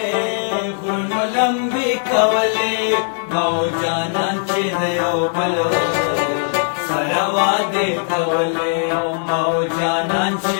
غرونو لمبې کولې مو جانان چې د یو بل سره وعدې کولې مو جانان چې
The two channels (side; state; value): right; silent; 67 dB below the other